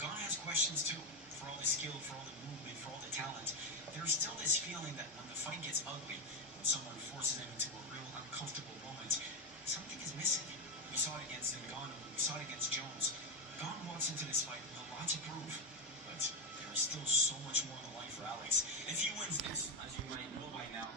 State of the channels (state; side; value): normal; both; correlation 0.13